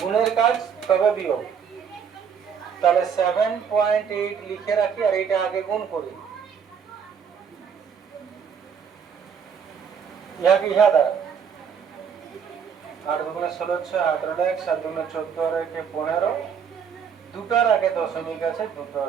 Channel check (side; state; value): left; quieter; 7.1 dB